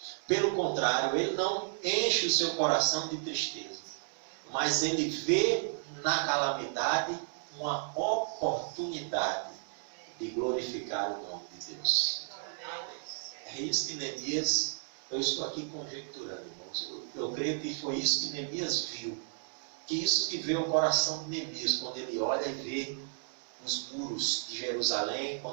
Pelo contrário, ele não enche o seu coração de tristeza, mas ele vê na calamidade uma oportunidade de glorificar o nome de Deus. É isso que Neemias, eu estou aqui conjecturando, irmãos. Eu creio que foi isso que Neemias viu. Que isso que vê o coração de Neemias, quando ele olha e vê os muros de Jerusalém,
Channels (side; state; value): left; silent; digital silence